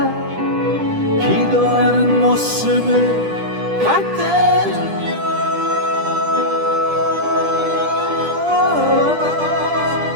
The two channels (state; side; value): late; left; 10 ms